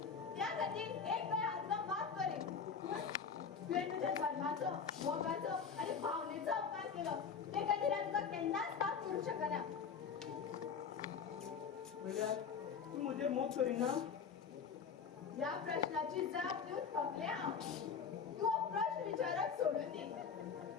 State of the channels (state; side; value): quieter; right; 6.3 dB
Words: त्या खातीर एक वेळ हांव तुका माफ करीन पूण तुवें म्हज्या धर्माचो मोगाचो आनी भावनेचो अपमान केलो ते खातीर हांव तुका केन्नाच माफ करूंक शकना म्हणल्यार तूं म्हजेर मोग करिना ह्या प्रश्नाची जाप दिवंक थकलें हांव तूं हो प्रश्न विचारप सोडून दी